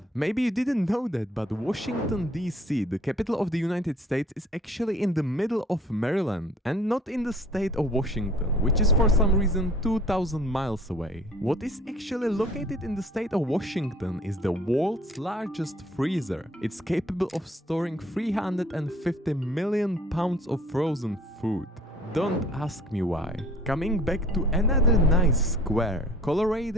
Maybe you didn't know that, but Washington DC, the capital of the United States, is actually in the middle of Maryland and not in the state of Washington, which is for some reason 2,000 miles away. What is actually located in the state of Washington is the world's largest freezer. It's capable of storing 350 million pounds of frozen food. Don't ask me why. Coming back to another nice square,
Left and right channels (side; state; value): both; normal; correlation 0.53